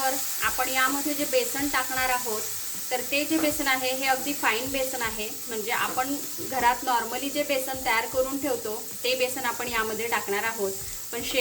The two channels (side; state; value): both; identical; correlation 1.00